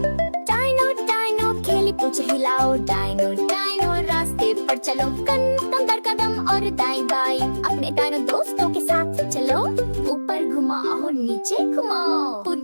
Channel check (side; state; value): both; inverted; correlation -1.00